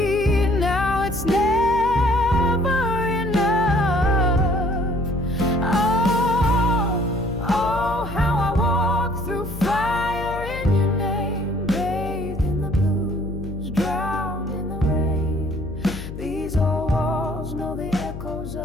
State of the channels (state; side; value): noise; left; hum, 9 dB below the sound